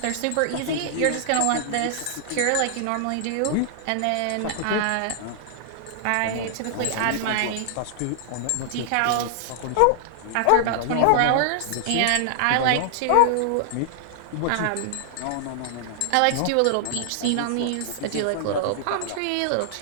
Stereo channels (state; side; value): different; both; correlation -0.01